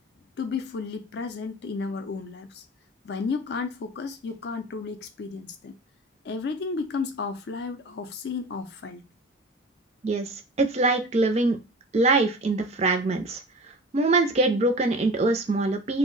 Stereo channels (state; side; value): normal; both; correlation 0.37